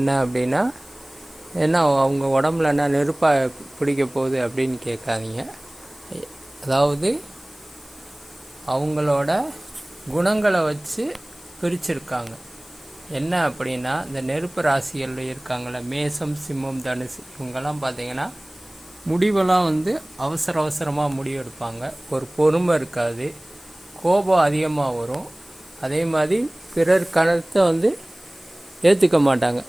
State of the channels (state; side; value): noise; left; hiss, 22 dB below the sound